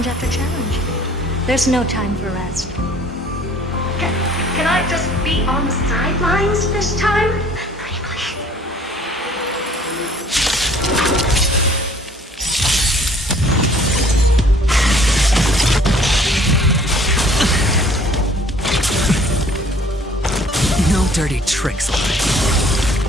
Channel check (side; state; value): both; normal; correlation 0.55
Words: after challenge. There's no time for rest. Can I just be on the sidelines this time? Pretty please. No dirty tricks.